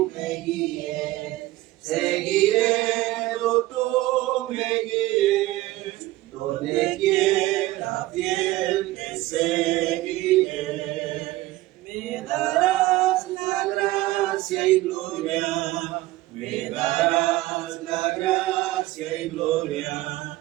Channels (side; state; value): left; quieter; 17.6 dB